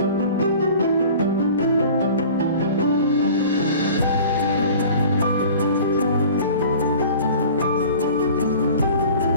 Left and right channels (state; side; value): inverted; both; correlation -0.43